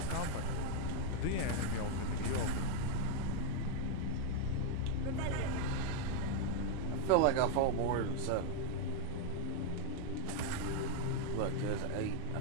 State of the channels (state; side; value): different; both; correlation 0.00